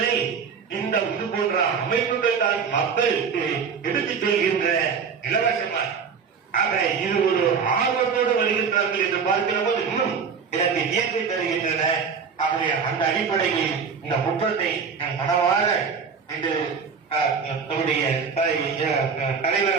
இந்த இது போன்ற அமைப்புகள் தான் மக்களுக்கு எடுத்துச் செல்கின்ற இலவசமாக. ஆக இது ஒரு ஆர்வத்தோடு வருகின்றார்கள் என்று பார்க்கிற போது இன்னும் எனக்கு இயற்கை தருகின்றன. ஆகவே அந்த அடிப்படையில் இந்த முற்றத்தை மனவார இன்று நம்முடைய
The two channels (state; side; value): quieter; left; 6.1 dB